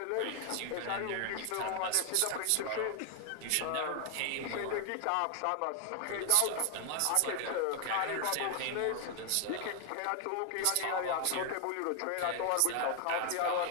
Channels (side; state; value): both; different; correlation 0.00